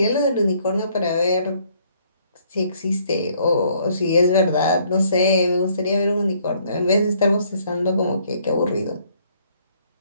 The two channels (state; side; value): inverted; both; correlation -0.64